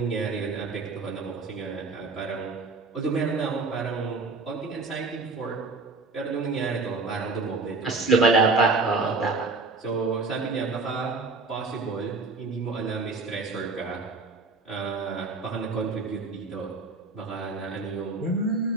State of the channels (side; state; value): left; quieter; 3.8 dB